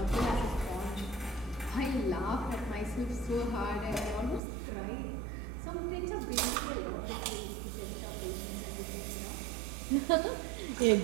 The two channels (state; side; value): drops out; left; at 4.4 s